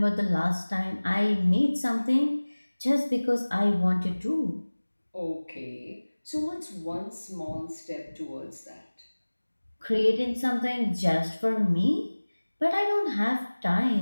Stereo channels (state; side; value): inverted; both; correlation -1.00